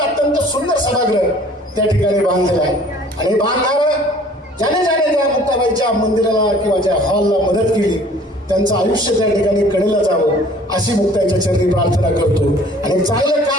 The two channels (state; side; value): normal; both; correlation 0.52